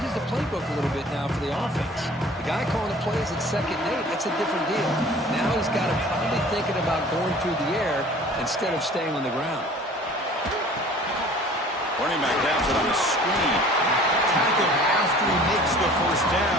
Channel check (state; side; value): normal; both; correlation 0.48